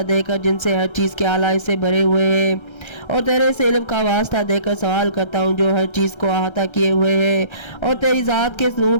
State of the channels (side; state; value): right; late; 1.3 ms